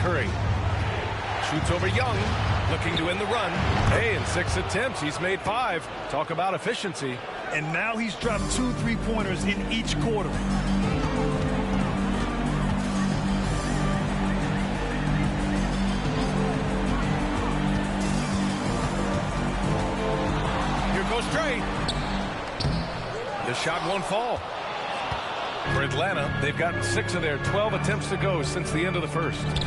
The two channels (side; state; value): both; identical; correlation 1.00